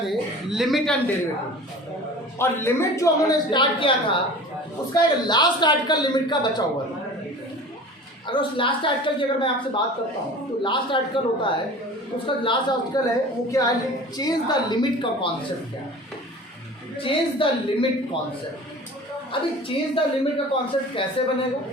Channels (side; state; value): both; normal; correlation 0.40